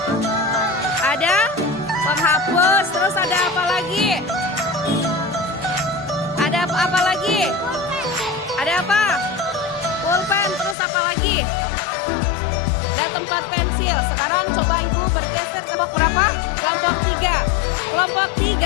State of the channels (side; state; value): right; drops out; at 10.8 s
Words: Ada penghapus, terus ada apa lagi? Ada apa lagi? Ada apa? Pulpen, terus apa lagi? Ada tempat pensil. Sekarang coba ibu bergeser ke kelompok berapa? Kelompok 3. Kelompok